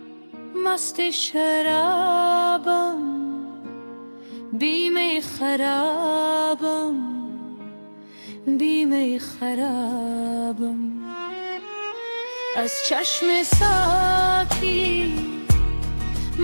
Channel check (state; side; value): inverted; both; correlation -1.00